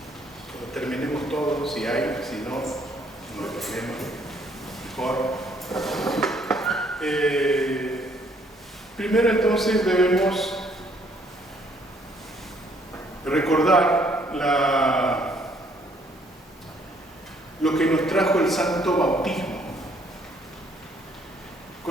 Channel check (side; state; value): both; normal; correlation 0.65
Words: cuando terminemos todo, si hay, si no, no hay problema, mejor. Primero entonces debemos recordar lo que nos trajo el santo bautismo.